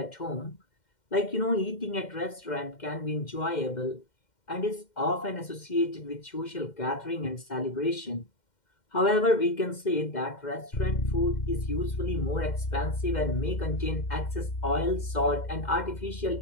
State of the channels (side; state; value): right; late; 2.1 ms